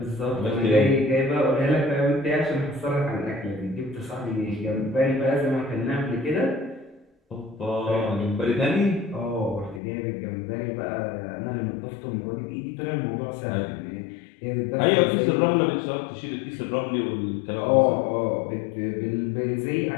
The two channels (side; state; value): right; drops out; at 9.8 s